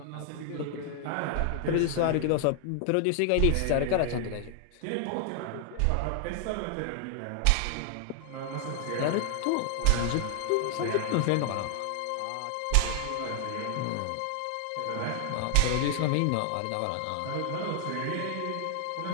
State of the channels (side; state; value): both; different; correlation 0.00